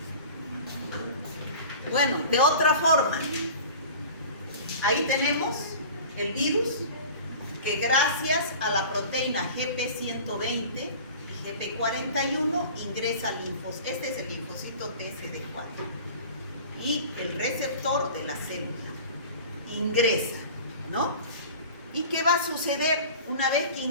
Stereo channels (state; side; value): inverted; both; correlation -0.40